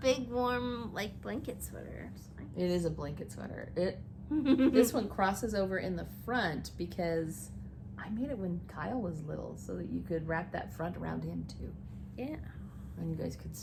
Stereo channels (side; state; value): both; identical; correlation 1.00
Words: warm, like, blanket sweater. It is a blanket sweater. This one crosses over in the front because I made it when Kyle was little so that you could wrap that front around him too. Yeah. And you guys could